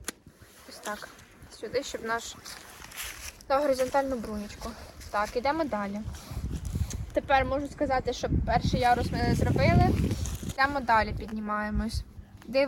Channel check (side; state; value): both; identical; correlation 1.00